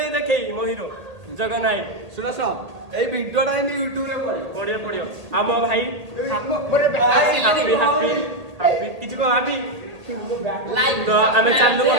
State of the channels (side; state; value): left; late; 1.8 ms